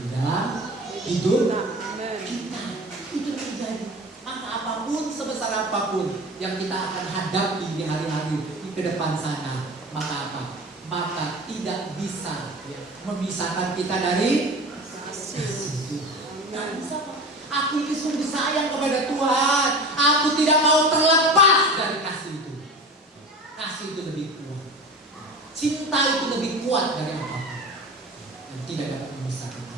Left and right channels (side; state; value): both; normal; correlation 0.34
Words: di dalam hidup Amin. kita. Itu terjadi. Maka apapun, sebesar apapun yang kita akan hadapi di hari-hari di ke depan sana, maka apa? Maka tidak bisa ya, memisahkan kita dari Kasih. Tuhan. Nggak Amin. bisa, Pak. Aku ini sungguh sayang kepada Tuhan. Aku tidak mau terlepas dari kasih itu. Kasih itu lebih kuat. Cinta itu lebih kuat dari apapun. Dan tidak dapat memisahkan